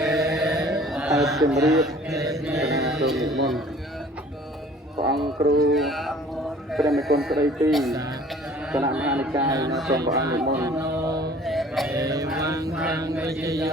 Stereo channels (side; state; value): both; normal; correlation 0.51